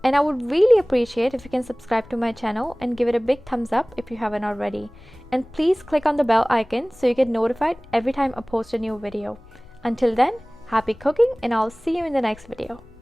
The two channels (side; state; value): left; noise; rumble, 23 dB below the sound